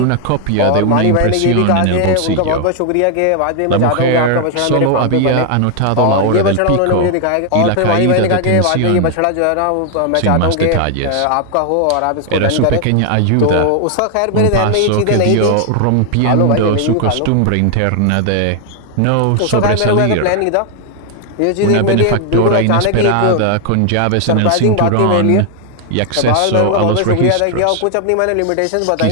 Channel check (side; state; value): both; different; correlation 0.00